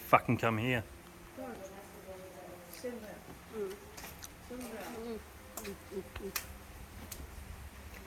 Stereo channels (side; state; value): both; identical; correlation 1.00